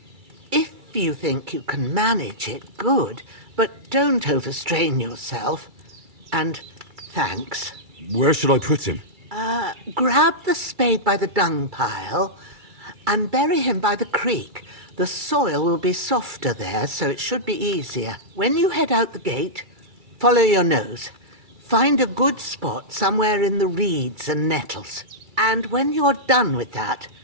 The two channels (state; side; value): late; left; 2.3 ms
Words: if you think you can manage it, good. But don't overstrain yourself. And thanks. Where should I put him? Grab the spade by the dung pile and bury him by the creek. The soil will be softer there, so it should be easier. When you head out the gate, follow your nose. Find a good spot somewhere in the reeds and nettles. And when you're done with that,